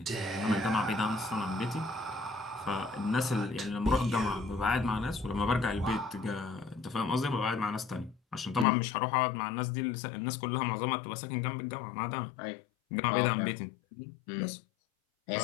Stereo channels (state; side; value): drops out; right; at 8.7 s